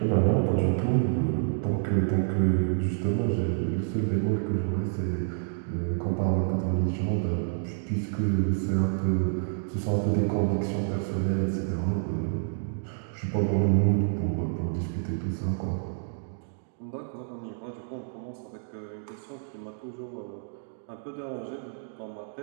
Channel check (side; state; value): left; silent; digital silence